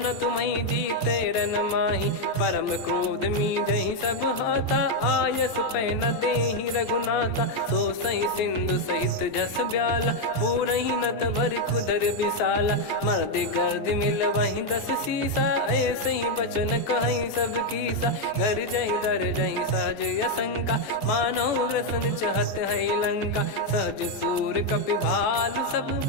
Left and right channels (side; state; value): right; late; 14 ms